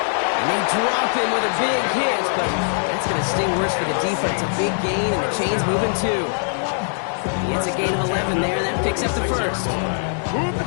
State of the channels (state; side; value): silent; right; 58 dB below the other